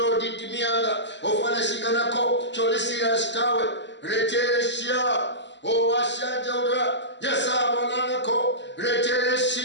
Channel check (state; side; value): late; right; 0.52 ms